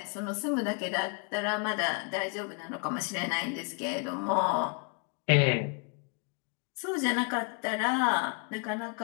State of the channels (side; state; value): right; quieter; 36.5 dB